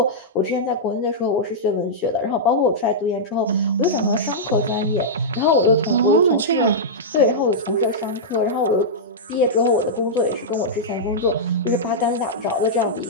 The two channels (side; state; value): both; normal; correlation -0.10